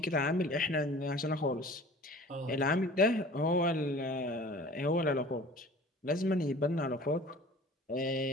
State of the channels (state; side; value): normal; both; correlation 0.44